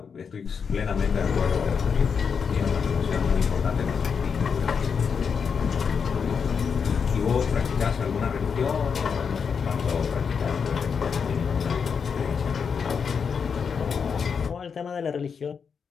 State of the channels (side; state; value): right; quieter; 6.2 dB